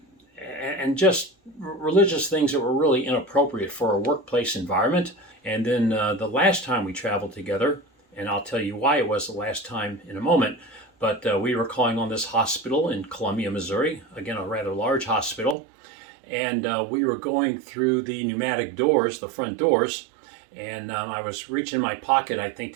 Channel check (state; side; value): drops out; left; at 15.6 s